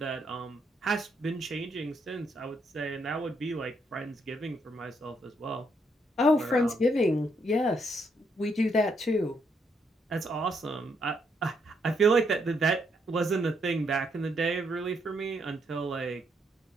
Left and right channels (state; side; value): normal; both; correlation 0.75